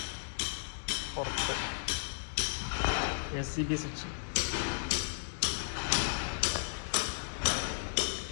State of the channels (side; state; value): right; silent; digital silence